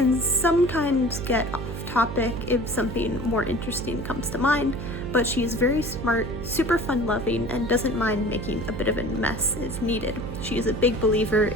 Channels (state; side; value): noise; right; hum, 7 dB below the sound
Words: sometimes get off topic if something more interesting comes to mind, but she is very smart, super fun-loving, and doesn't mind making a bit of a mess if needed. She is a big believer